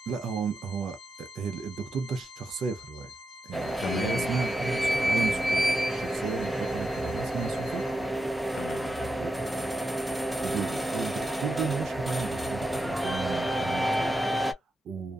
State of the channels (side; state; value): both; normal; correlation 0.87